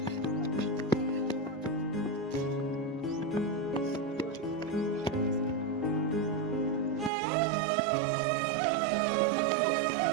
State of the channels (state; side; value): drops out; left; at 7.1 s